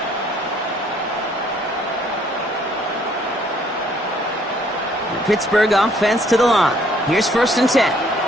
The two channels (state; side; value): normal; both; correlation 0.63